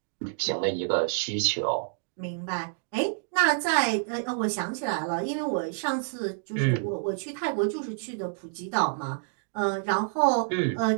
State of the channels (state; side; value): silent; left; digital silence